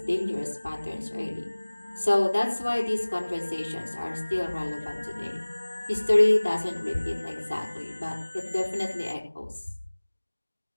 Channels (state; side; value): inverted; both; correlation -1.00